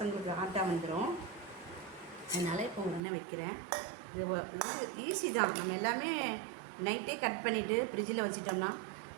ஆட்டா வந்துடும். அதனால் இப்போ உடனே வைக்கிறேன். இது ஈஸி தான். நம்ம எல்லாமே நைட்டே கட் பண்ணிவிட்டு ஃப்ரிட்ஜில் வச்சிட்டோம்னா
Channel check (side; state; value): left; drops out; at 3.0 s